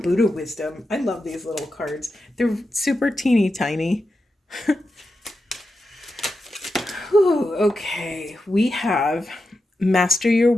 wisdom. I love these little cards. They're super teeny tiny. Whew, okay, we have master your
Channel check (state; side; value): normal; both; correlation 0.89